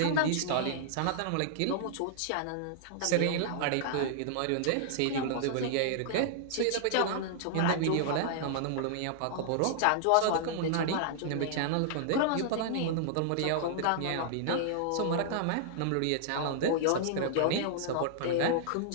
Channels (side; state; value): both; different; correlation -0.01